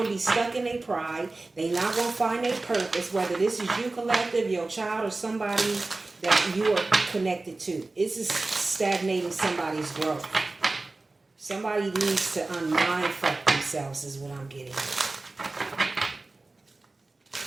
to be stuck in their pride. They're not going to find their purpose, whether this is you collective, your child, or somebody that you are connected to. It's just stagnating somebody's growth. Somebody needs to unmindfuck themselves is what I'm getting.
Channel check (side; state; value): left; quieter; 3.3 dB